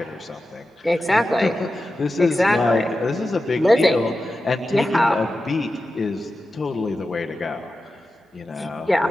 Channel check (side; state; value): both; normal; correlation 0.92